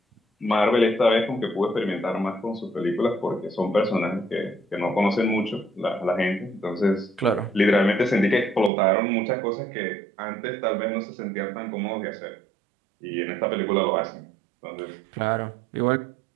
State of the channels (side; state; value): left; drops out; at 8.7 s